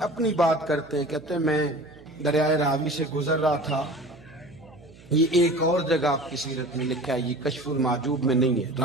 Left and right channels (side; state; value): right; noise; hum, 23 dB below the sound